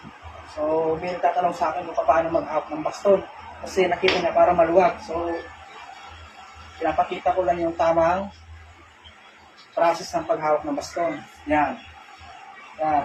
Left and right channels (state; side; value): identical; both; correlation 1.00